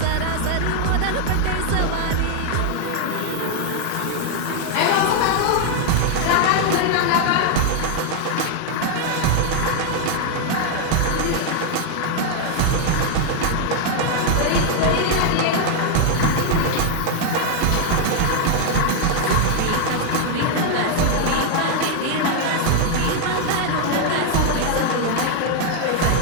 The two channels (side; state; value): both; different; correlation 0.00